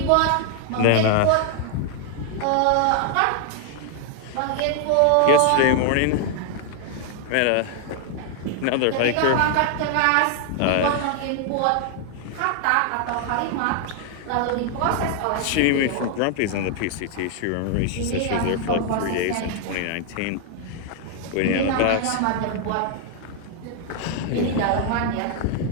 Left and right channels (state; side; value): different; both; correlation 0.00